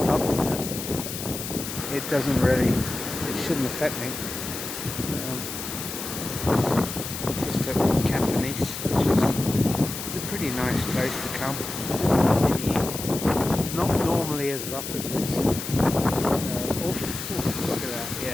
up that it doesn't really, it shouldn't affect me. Just at Captain East, which is a pretty nice place to come in the evening. It's not normally as rough as this. Oof, look at that,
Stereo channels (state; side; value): noise; left; hiss, 7 dB below the sound